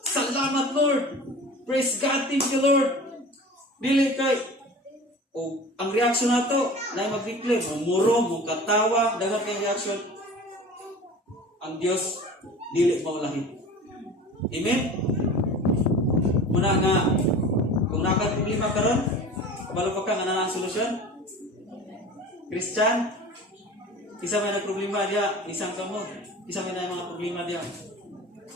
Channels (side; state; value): both; normal; correlation 0.39